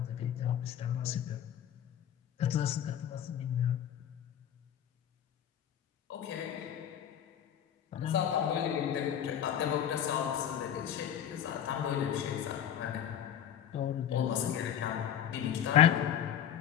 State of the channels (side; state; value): right; quieter; 9.9 dB